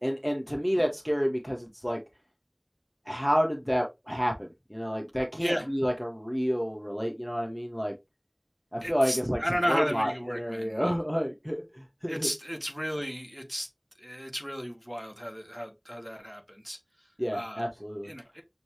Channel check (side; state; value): both; identical; correlation 1.00